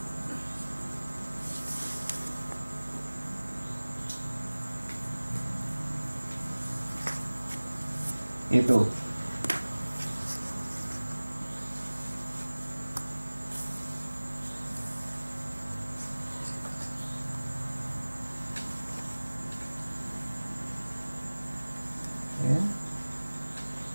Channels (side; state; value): both; inverted; correlation -1.00